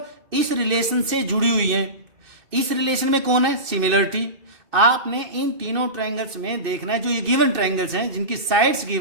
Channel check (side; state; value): left; late; 2.6 ms